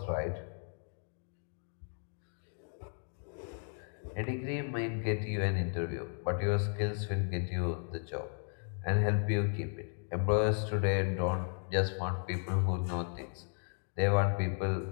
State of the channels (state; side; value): silent; right; 54 dB below the other